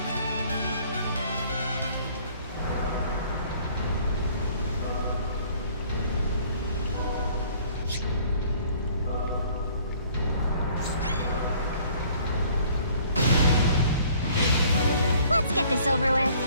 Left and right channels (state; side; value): inverted; both; correlation -0.56